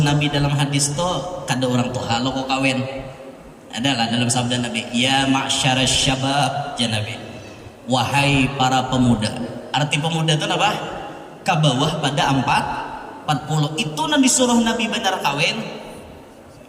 dalam hadis tuh kada orang tuh halo kok kawin. Adalah dalam sabda Nabi, ya ma'syarasy syabab, ya Nabi, wahai para pemuda. Arti pemuda itu apa? Ke bawah pada 40. Itu nang disuruh Nabi benar kawin.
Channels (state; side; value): identical; both; correlation 1.00